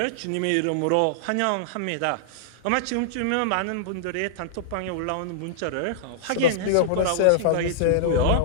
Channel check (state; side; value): different; both; correlation -0.02